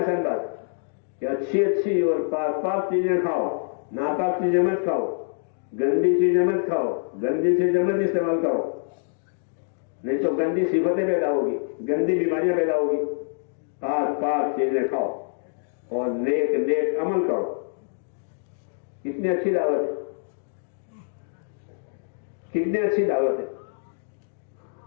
بات کہ اچھی اچھی اور پاک پاک چیزیں کھاؤ، ناپاک چیزیں مت کھاؤ، گندی چیزیں مت کھاؤ، گندی چیزیں مت استعمال کرو، نہیں تو گندی صفتیں پیدا ہوگی، گندی بیماریاں پیدا ہوگی. پاک پاک چیزیں کھاؤ اور نیک نیک عمل کرو. کتنی اچھی دعوت ہے، کتنی اچھی دعوت ہے.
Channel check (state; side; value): silent; right; digital silence